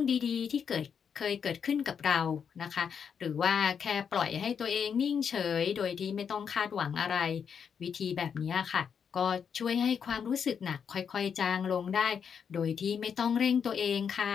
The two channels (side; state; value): right; quieter; 7.1 dB